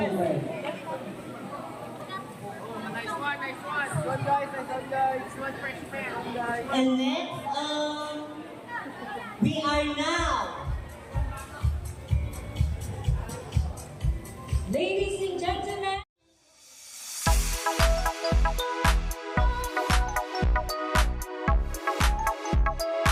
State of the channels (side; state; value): both; identical; correlation 1.00